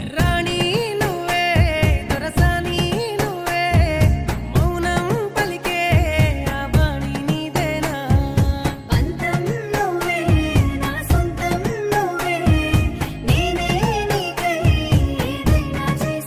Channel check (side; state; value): both; identical; correlation 1.00